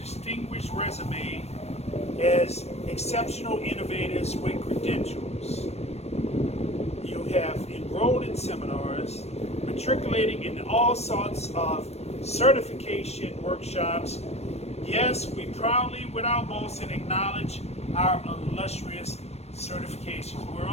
resume, as exceptional innovators with credentials. You have enrolled in seminars, matriculating in all sorts of certification workshops. Yes, we proudly, without boasting, acknowledge our illustrious certifications. We're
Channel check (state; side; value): late; right; 0.31 ms